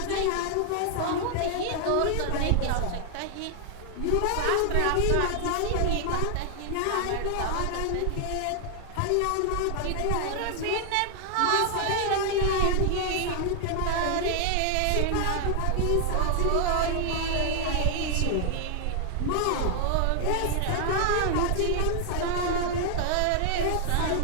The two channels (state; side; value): different; both; correlation 0.00